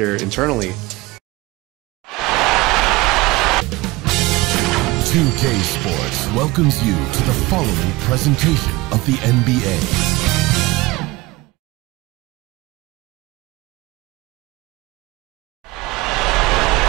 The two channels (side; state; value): left; quieter; 21.1 dB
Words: internally, 2K Sports welcomes you to the following presentation of the NBA.